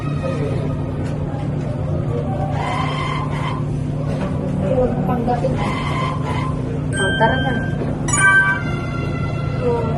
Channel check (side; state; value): both; identical; correlation 1.00